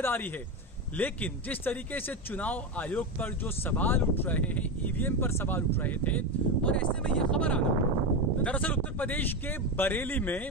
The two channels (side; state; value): both; normal; correlation 0.16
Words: है। लेकिन जिस तरीके से चुनाव आयोग पर जो सवाल उठ रहे हैं, ईवीएम पर सवाल उठ रहे थे, और ऐसे में यह खबर आना, दरअसल उत्तर प्रदेश के बरेली